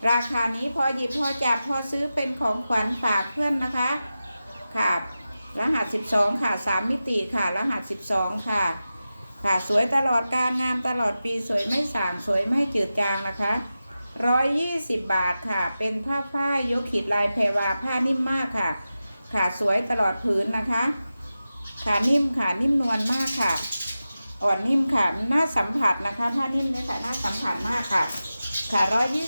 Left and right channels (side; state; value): both; inverted; correlation -0.93